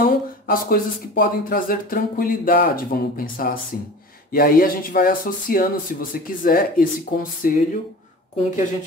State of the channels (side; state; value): both; normal; correlation 0.37